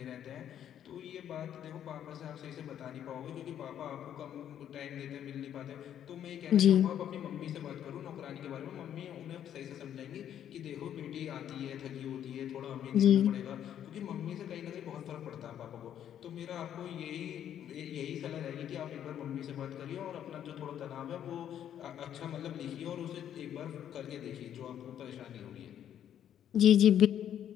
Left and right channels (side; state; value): right; quieter; 10.1 dB